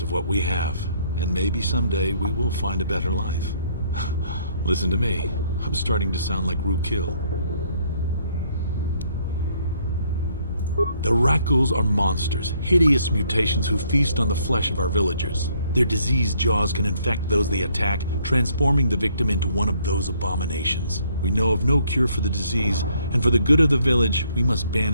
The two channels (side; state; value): both; inverted; correlation -0.67